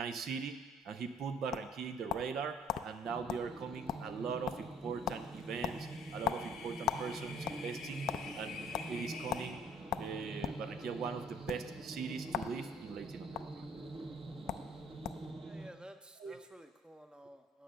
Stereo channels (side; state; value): both; normal; correlation 0.56